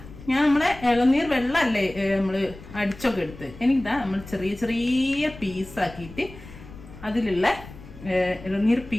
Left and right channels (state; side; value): noise; left; rumble, 17 dB below the sound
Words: ഞാൻ നമ്മളെ ഇളനീർ വെള്ളമല്ലേ നമ്മൾ അടിച്ചൊക്കെ എടുത്ത് നമ്മൾ ചെറിയ ചെറിയ പീസാക്കിയിട്ട് അതിലുള്ള ഇളനീർ